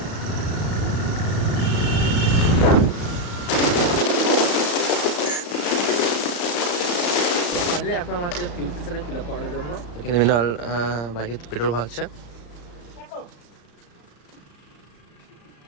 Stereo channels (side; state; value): right; late; 34 ms